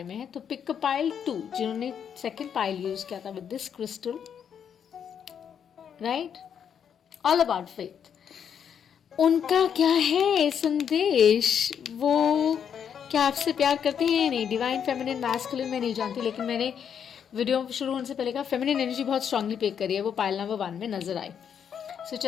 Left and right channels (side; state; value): right; quieter; 8.0 dB